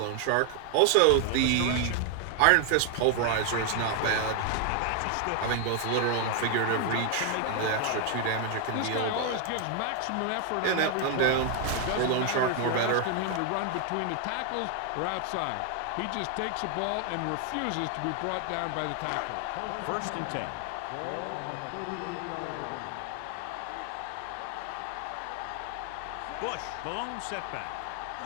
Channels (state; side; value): different; both; correlation 0.00